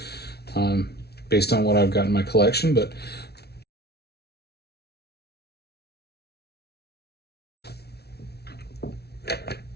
based on what I've got in my collection. But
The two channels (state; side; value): late; right; 0.48 ms